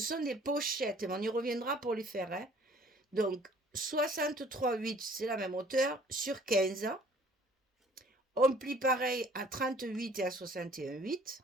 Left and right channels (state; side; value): normal; both; correlation 0.55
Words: des pochettes. On y reviendra pour les faire. Hein. Donc, 63,8, c'est la même hauteur, sur 15. On plie pareil à 38 et à 61,8.